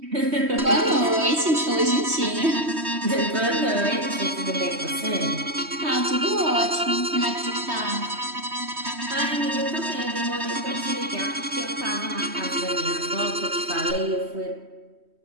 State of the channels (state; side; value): late; left; 3.1 ms